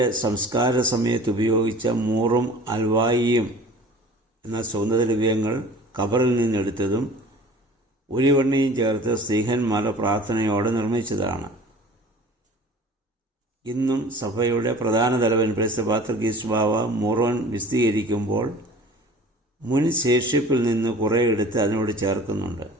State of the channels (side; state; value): both; normal; correlation 0.45